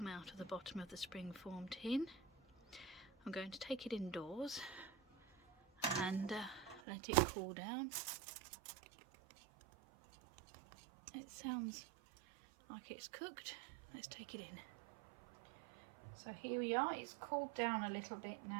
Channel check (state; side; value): drops out; left; at 6.8 s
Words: out of the bottom of the springform tin. I'm going to take it indoors and let it cool down. It sounds like it's cooked. Let's take it in. So here we are. It's cooled down a little bit